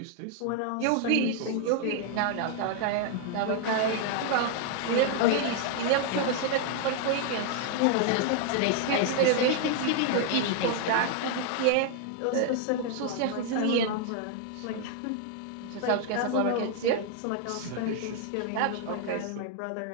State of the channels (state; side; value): different; both; correlation 0.00